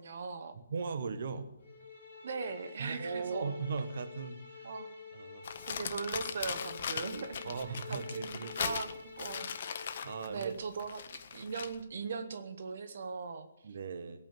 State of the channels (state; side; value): inverted; both; correlation -0.73